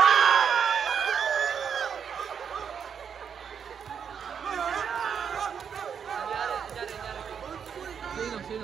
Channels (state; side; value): quieter; left; 7.3 dB